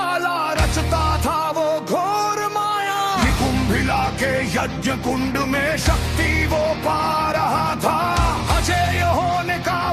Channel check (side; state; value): both; identical; correlation 1.00